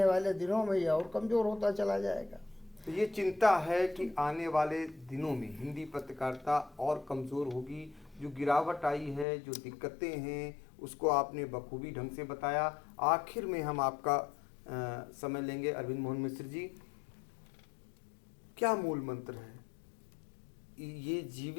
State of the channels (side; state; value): right; drops out; at 9.2 s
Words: वाले दिनों में यह और कमज़ोर होता चला जाएगा। तो ये चिंता है कि आने वाले दिनों में हिंदी पत्रकारिता और कमज़ोर होगी। जो गिरावट आई है, जो दिक्कतें हैं, उसको आपने बखूबी ढंग से बताया। आखिर में हम आपका समय लेंगे। अरविंद मोहन मिश्र जी, क्या मूल मंत्र है? ये